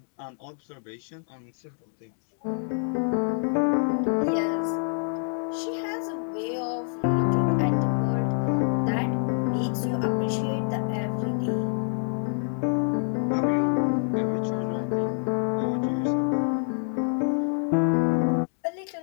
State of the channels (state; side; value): silent; right; 60 dB below the other